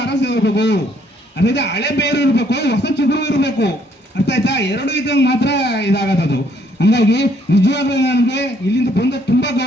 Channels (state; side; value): normal; both; correlation 0.67